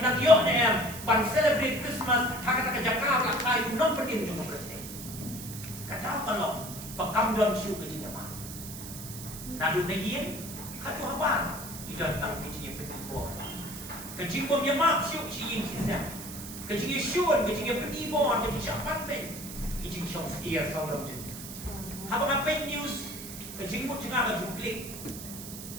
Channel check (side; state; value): right; noise; hiss, 11 dB below the sound